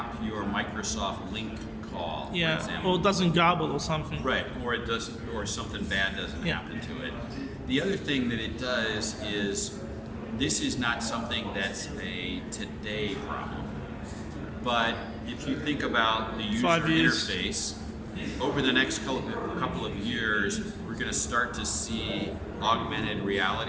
your Microsoft Link call, for example. Or it doesn't garble or something. Right, or it doesn't, or something bad doesn't happen to it. The other thing that it does is this is not something that's a today problem, but if you think about the user interface, over the next couple of years, we're going to start to see augmented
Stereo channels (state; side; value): identical; both; correlation 1.00